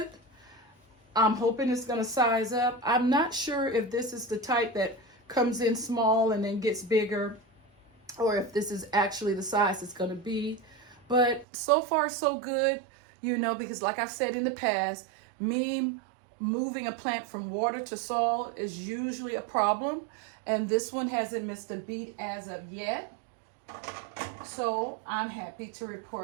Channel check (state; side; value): drops out; left; at 11.5 s